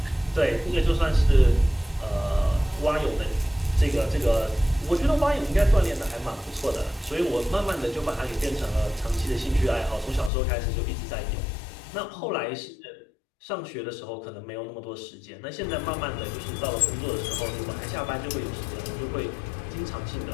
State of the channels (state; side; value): drops out; right; at 10.3 s